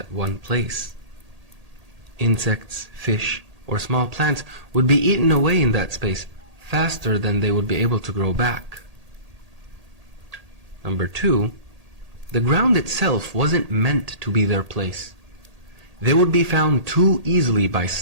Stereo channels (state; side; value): late; left; 1.8 ms